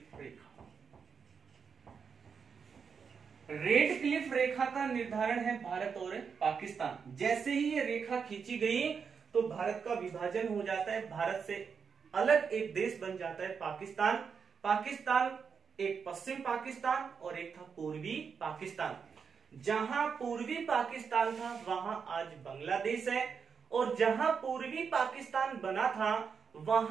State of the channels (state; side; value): quieter; left; 6.1 dB